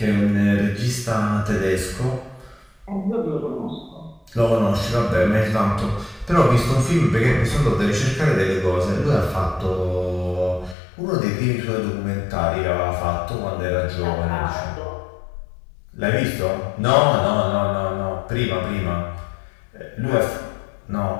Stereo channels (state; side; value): drops out; right; at 10.8 s